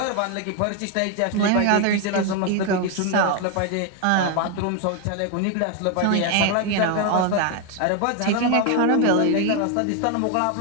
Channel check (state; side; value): different; both; correlation 0.01